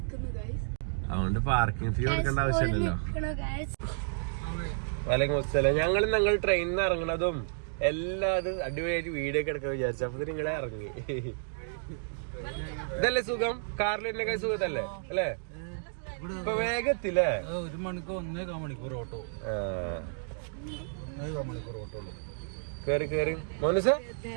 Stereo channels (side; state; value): left; silent; digital silence